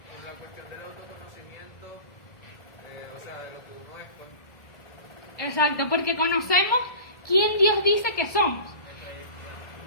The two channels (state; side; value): late; right; 1.7 ms